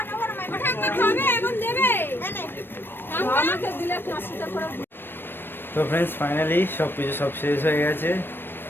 খাবে, এখন দেবে। আমাকে দিলে 5 টাকা করে। তো ফ্রেন্ডস, ফাইনালি সব শেষ হয়ে গেছে।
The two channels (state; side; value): late; right; 0.098 ms